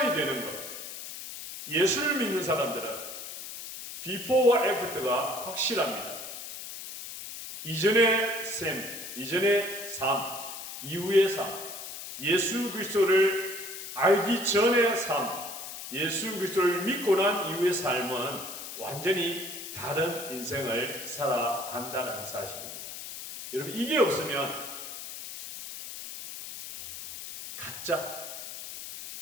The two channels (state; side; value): noise; left; hiss, 10 dB below the sound